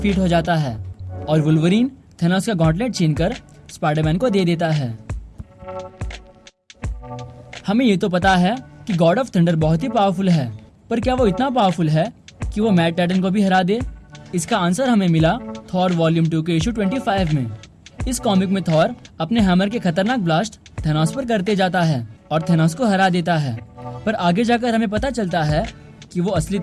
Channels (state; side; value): identical; both; correlation 1.00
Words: हो जाता है। और वुल्वरीन थेनोस का गॉटलेट छीनकर स्पाइडरमैन को दे देता है। हमें ये तो पता है कि गॉड ऑफ थंडर बहुत ही पावरफुल है, पर क्या वो इतना पावरफुल है कि वो मैट टाइटन को भी हरा दे? इसका आंसर हमें मिला थॉर वॉल्यूम 2 के इशू 25 में। इस कॉमिक में थॉर अपने हैमर के खतरनाक ब्लास्ट थेनोस पर करते जाता है और थेनोस को हरा देता है। पर आगे जाकर हमें पता चलता है कि वो असली